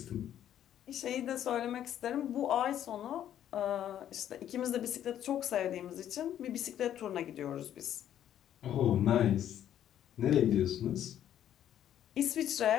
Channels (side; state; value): right; quieter; 10.8 dB